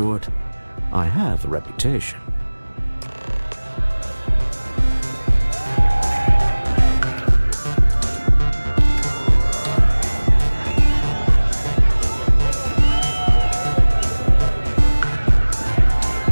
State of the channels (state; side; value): inverted; both; correlation -1.00